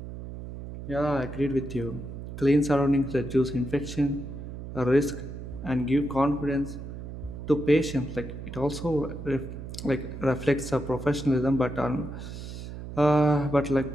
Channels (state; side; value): noise; right; hum, 10 dB below the sound